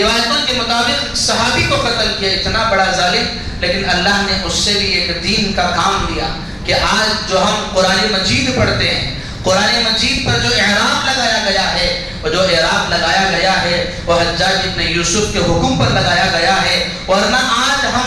کے مطابق صحابی کو قتل کیا, اتنا بڑا ظالم, لیکن اللہ نے اس سے بھی ایک دین کا کام لیا. کہ آج جو ہم قرآن مجید پڑھتے ہیں, قرآن مجید پر جو اعراب لگایا گیا ہے, وہ جو اعراب لگایا گیا ہے وہ حجاج ابن یوسف کے حکم پر لگایا گیا ہے, ورنہ آج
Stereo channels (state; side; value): identical; both; correlation 1.00